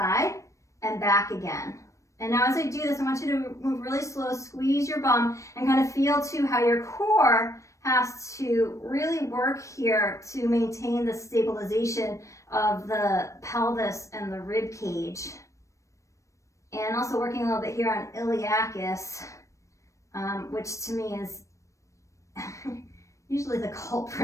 and back again. And now as I do this, I want you to move really slow, squeeze your bum, and kind of feel too how your core has to really work here to maintain the stabilization of the pelvis and the rib cage. And also working a little bit here on iliacus, which to me is usually the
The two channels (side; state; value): right; late; 0.15 ms